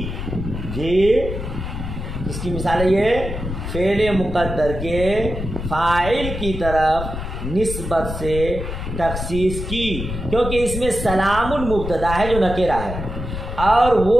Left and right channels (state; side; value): noise; left; rumble, 6 dB below the sound